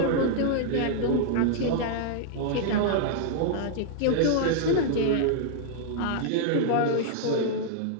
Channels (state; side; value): different; both; correlation -0.01